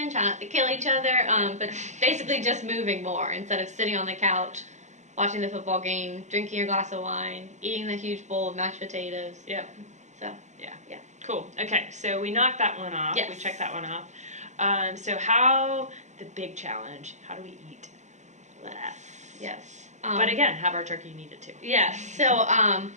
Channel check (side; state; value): left; late; 0.34 ms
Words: try not to kill each other, but basically just moving more instead of sitting on the couch, watching the football game, drinking your glass of wine, eating the huge bowl of mashed potatoes. Yep. So, yeah. Cool. Okay, so we knocked that one off. Yes. We checked that one off. So how... the big challenge, how do we eat less? Yes. But again, have our turkey and eat it too. Yes. So